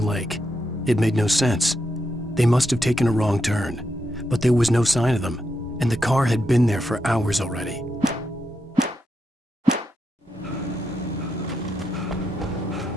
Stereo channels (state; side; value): normal; both; correlation 0.84